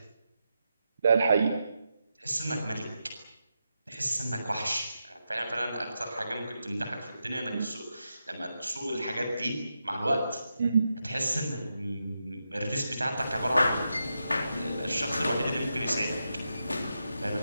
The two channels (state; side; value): inverted; both; correlation -0.87